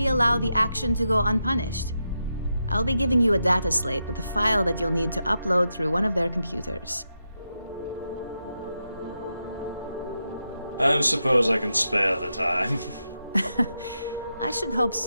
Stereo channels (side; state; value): both; inverted; correlation -0.87